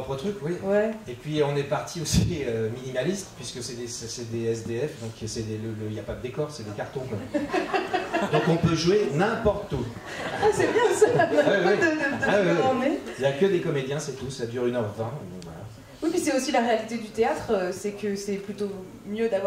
truc, oui. Ouais. Et puis on est parti aussi minimaliste, puisque c'est des SDF, donc il n'y a pas de décor, c'est des cartons. Quoi. Donc on peut jouer n'importe où. Ah, c'est bien ça. Il n'y a que des comédiens, c'est tout, ça dure 1h20. Voilà. Oui, puis c'est aussi la réalité du théâtre, c'est que c'est plutôt mieux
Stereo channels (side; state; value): both; identical; correlation 1.00